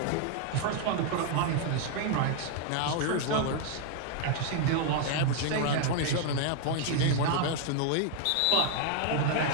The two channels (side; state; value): both; different; correlation 0.00